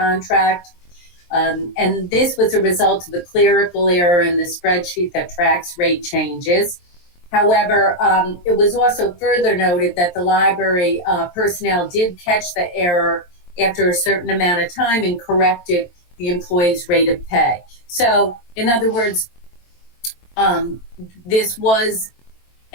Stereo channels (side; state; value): right; late; 23 ms